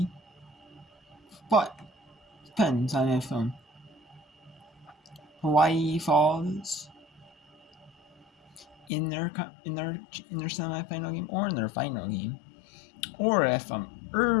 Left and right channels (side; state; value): right; drops out; at 8.9 s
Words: but depends on if Hawaii falls in their semifinal game or in their final game, or if